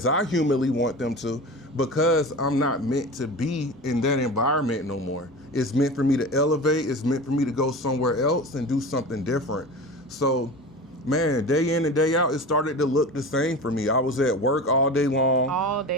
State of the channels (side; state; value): both; normal; correlation 0.32